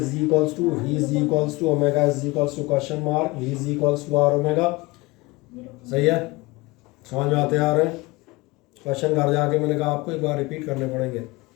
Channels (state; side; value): quieter; right; 23.0 dB